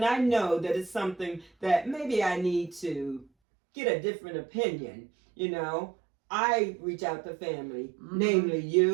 I know that it's something that maybe I need to get a different opinion, I reach out to family, namely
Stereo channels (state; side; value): drops out; left; at 3.2 s